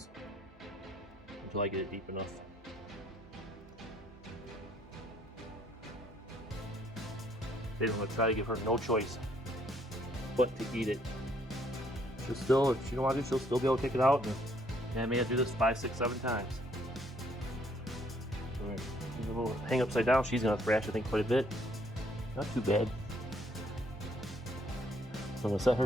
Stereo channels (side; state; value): both; normal; correlation 0.67